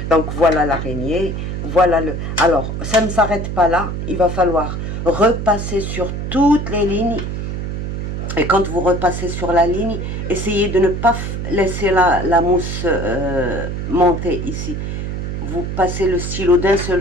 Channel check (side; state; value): right; noise; hum, 4 dB below the sound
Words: Donc voilà l'araignée, voilà le... Alors, ça ne s'arrête pas là, il va falloir repasser sur toutes les lignes. Et quand vous repassez sur la ligne, essayez de ne pas laisser la mousse monter ici. Vous passez le stylo d'un